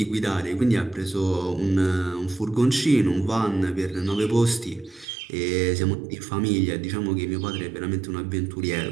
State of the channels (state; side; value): drops out; left; at 5.1 s